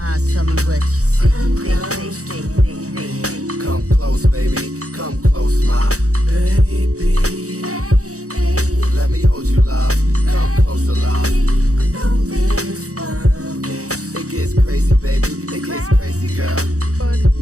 eyes, tell me what you see. Come close, baby, come close, my baby. Let me hold you, love. Come closer, love. It gets crazy, baby. It gets crazy, girl.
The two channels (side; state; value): left; late; 0.65 ms